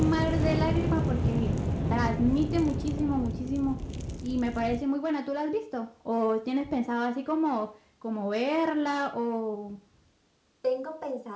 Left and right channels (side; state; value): both; identical; correlation 1.00